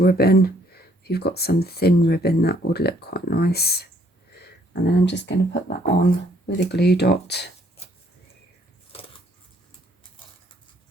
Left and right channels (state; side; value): normal; both; correlation 0.65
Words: If you've got some thin ribbon, that would look quite nice. And then I'm just going to put that on with a glue dot.